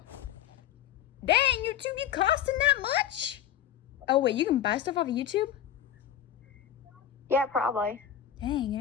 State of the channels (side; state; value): right; quieter; 10.1 dB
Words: Dang, YouTube, you costing that much? Oh wait, you can buy stuff off of YouTube? Yeah, probably.